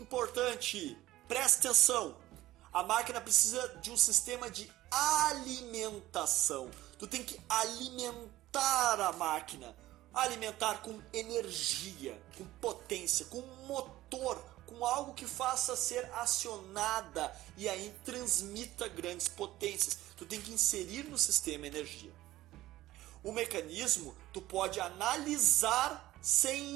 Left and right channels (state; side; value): quieter; left; 15.9 dB